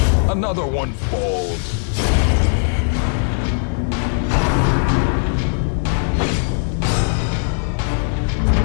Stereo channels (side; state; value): right; silent; 60 dB below the other